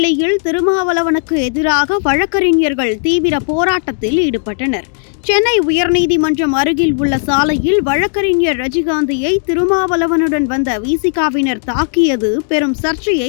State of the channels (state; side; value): silent; right; digital silence